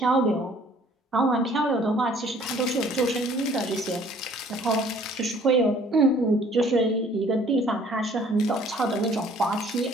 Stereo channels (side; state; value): both; normal; correlation 0.56